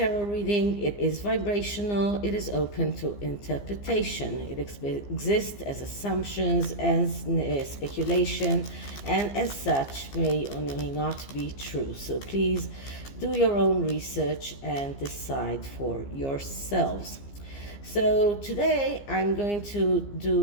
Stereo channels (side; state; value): right; late; 15 ms